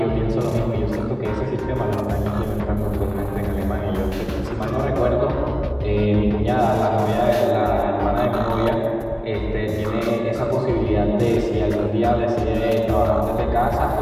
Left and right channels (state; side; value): identical; both; correlation 1.00